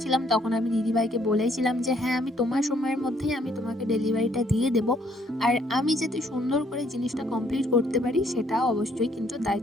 তখন আমি দিদিভাইকে বলেছিলাম যে, "হ্যাঁ, আমি তোমার সময়ের মধ্যেই আমি তোমাকে ডেলিভারিটা দিয়ে দেবো। আর আমি যাতে সুন্দর করে জিনিসটা কমপ্লিট করতে পারি সেটা অবশ্যই কিন্তু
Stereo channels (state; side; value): normal; both; correlation 0.67